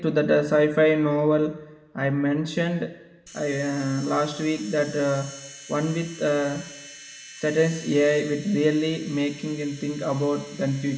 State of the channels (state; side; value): identical; both; correlation 1.00